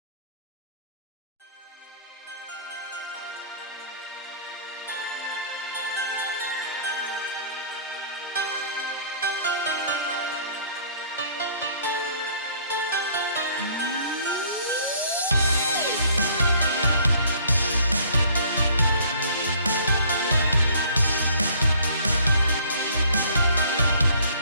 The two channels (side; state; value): both; inverted; correlation -0.56